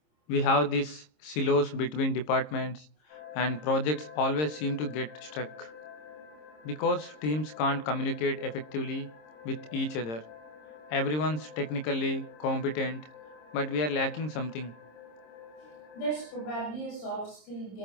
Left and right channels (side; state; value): right; late; 26 ms